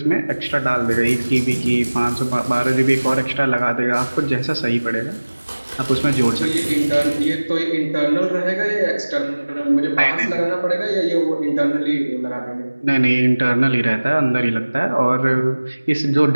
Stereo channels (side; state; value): both; inverted; correlation -1.00